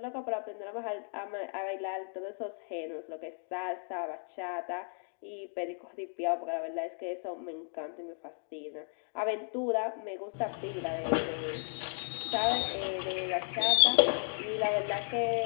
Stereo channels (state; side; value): silent; right; 55 dB below the other